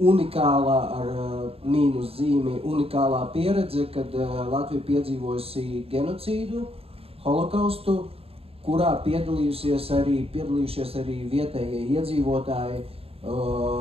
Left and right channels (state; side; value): late; left; 0.28 ms